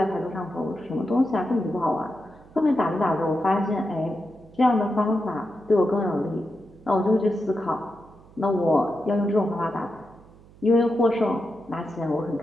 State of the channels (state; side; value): noise; right; hum, 24 dB below the sound